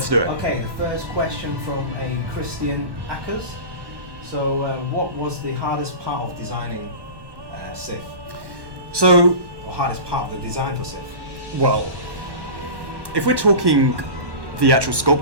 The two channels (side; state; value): left; late; 1.1 ms